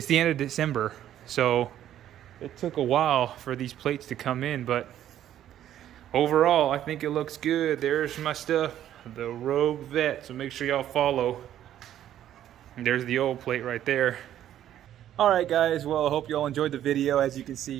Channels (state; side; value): quieter; left; 11.5 dB